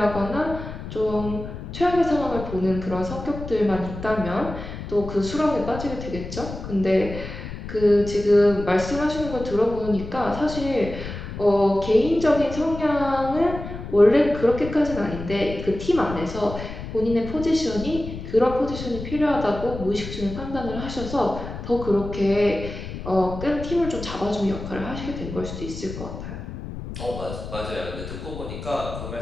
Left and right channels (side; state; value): left; noise; rumble, 9 dB below the sound